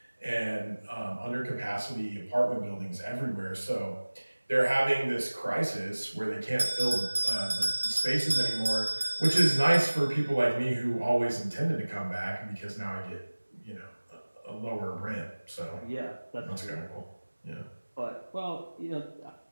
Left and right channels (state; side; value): inverted; both; correlation -1.00